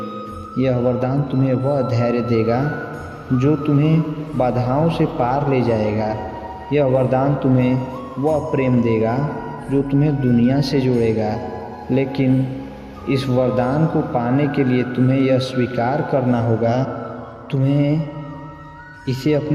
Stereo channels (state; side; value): identical; both; correlation 1.00